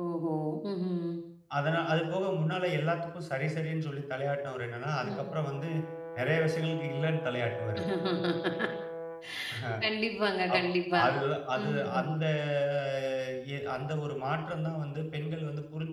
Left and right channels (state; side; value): identical; both; correlation 1.00